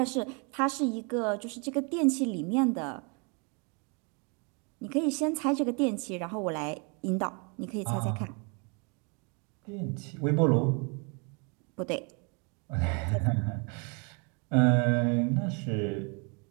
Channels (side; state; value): left; quieter; 34.4 dB